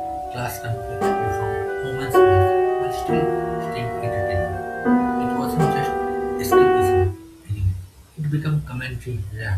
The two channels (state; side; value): identical; both; correlation 1.00